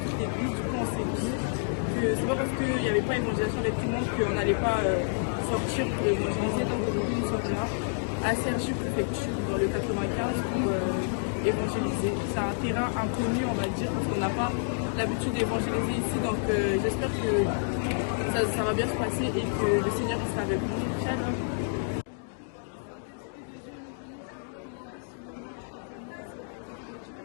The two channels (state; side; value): silent; right; digital silence